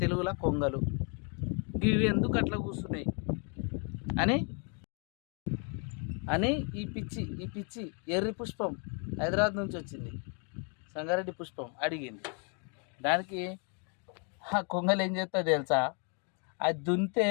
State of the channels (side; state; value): right; quieter; 38.1 dB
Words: తెలుగులో కొంగలు. ఇవి ఎందుకు అట్లా కూర్చున్నాయి అని అని ఈ పిచ్చి ఎర్రి పుష్పం హైదరాబాద్ నుంచి వచ్చింది, సంగారెడ్డి పుష్పం అడిగింది. దానికి ఆ కొంగలు ఏం చేస్తాయో తెలుసా, అది దున్నితే